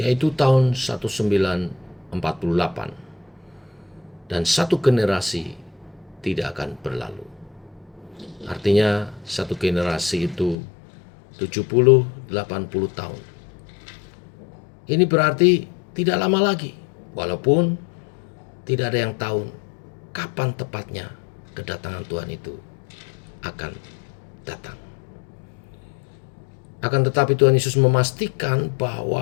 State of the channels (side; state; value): right; drops out; at 10.6 s